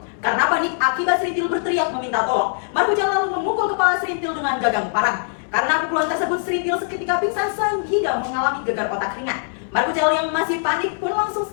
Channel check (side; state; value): right; silent; digital silence